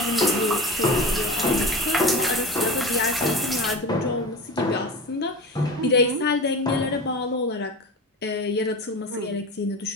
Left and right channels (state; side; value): normal; both; correlation 0.31